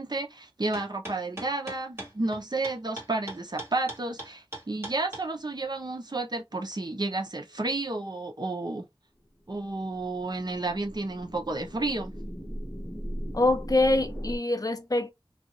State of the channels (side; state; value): both; normal; correlation 0.69